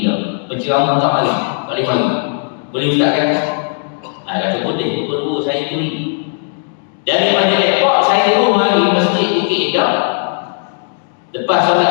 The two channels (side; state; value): right; silent; 65 dB below the other